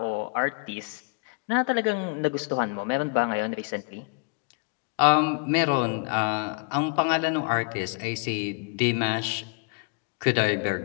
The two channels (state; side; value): quieter; right; 33.2 dB